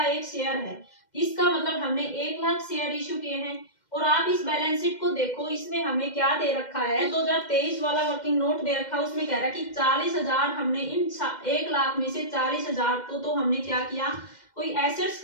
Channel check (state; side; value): late; right; 2.1 ms